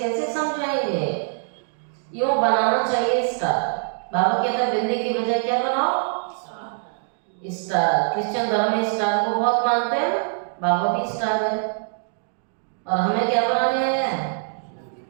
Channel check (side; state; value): left; silent; digital silence